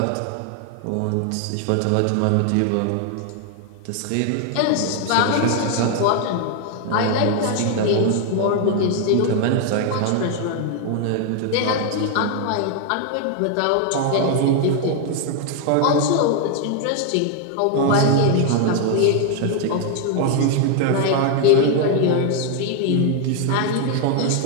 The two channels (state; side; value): different; both; correlation 0.00